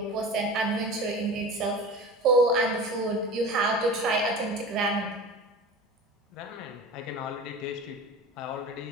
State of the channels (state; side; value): normal; both; correlation 0.35